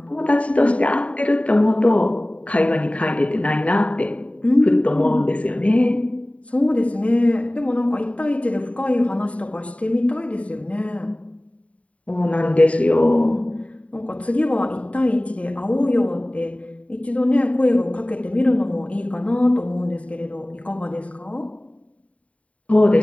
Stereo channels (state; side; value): late; right; 0.066 ms